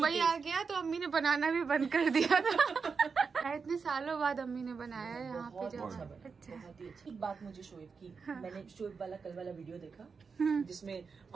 आ गया तो अम्मी ने बनाना भी बंद कर दिया था। इतने सालों बाद अम्मी ने बनाया है यहाँ पे। अच्छा, बहुत ही अच्छी बात मुझे शोएब की। मैंने शोएब वाला कल वाला वीडियो देखा जिसमें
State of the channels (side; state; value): left; quieter; 5.3 dB